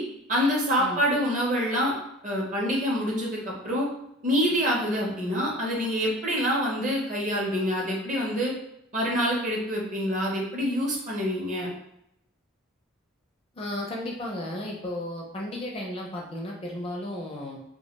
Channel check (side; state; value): both; normal; correlation 0.43